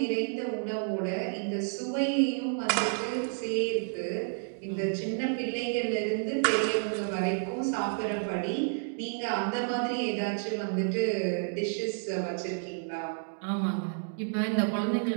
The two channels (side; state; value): left; silent; digital silence